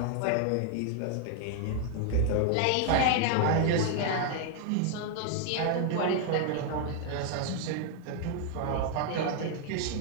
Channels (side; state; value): both; different; correlation 0.00